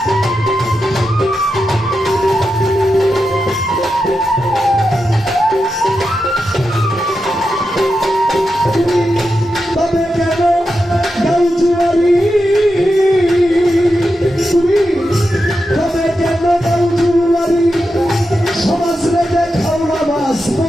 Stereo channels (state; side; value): normal; both; correlation 0.88